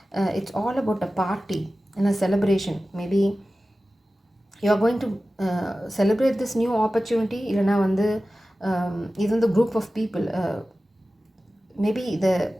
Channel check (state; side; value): normal; both; correlation 0.95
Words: It's all about a party and a celebration. Maybe you are going to celebrate this new opportunity. இல்லைனா வந்து இது வந்து குரூப் ஆஃப் பீப்புள் மேபி